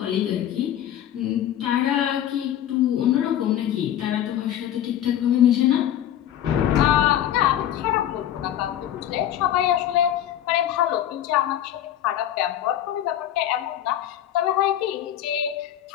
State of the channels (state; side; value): quieter; right; 11.3 dB